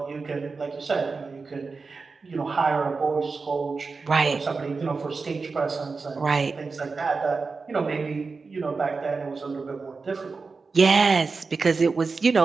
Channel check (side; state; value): left; quieter; 4.4 dB